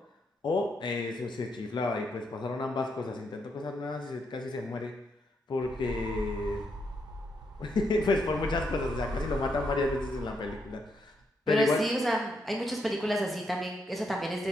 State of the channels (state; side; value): normal; both; correlation 0.78